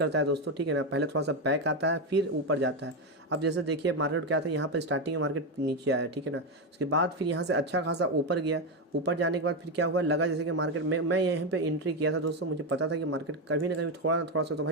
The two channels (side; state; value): both; normal; correlation 0.09